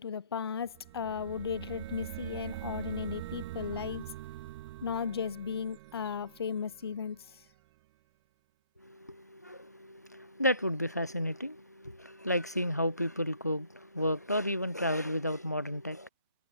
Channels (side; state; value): both; inverted; correlation -0.63